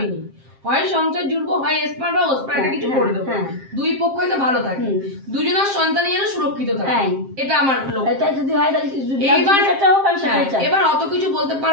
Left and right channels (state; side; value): late; left; 7.5 ms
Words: হয় সংসার জুড়বো, হয় এসপার বা ওসপার, এটা কিছু করে দেবো, দুই পক্ষই তো ভালো থাকে, দুজনের সন্তানই যেন সুরক্ষিত থাকে, এটা আমার লক্ষ্য। এবার অত কিছু বলতে